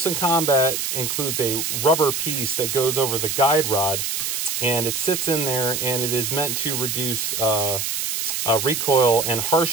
Combat includes a rubber piece that goes over the guide rod, and it sits in there, and it is meant to reduce recoil and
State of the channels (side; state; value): right; noise; hiss, 1 dB below the sound